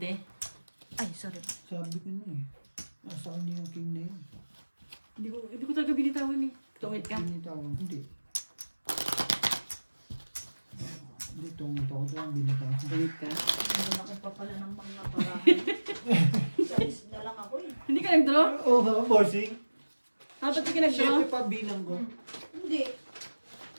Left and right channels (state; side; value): inverted; both; correlation -1.00